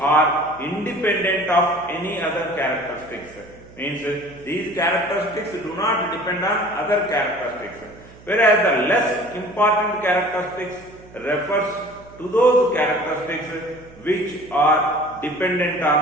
are independent of any other characteristics. Means these characteristics do not depend on other characteristics, whereas the less important characteristics refers to those characteristics which are dependent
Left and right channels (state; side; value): noise; right; hum, 22 dB below the sound